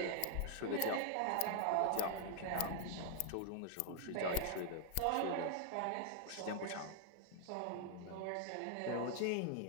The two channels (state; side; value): different; both; correlation 0.00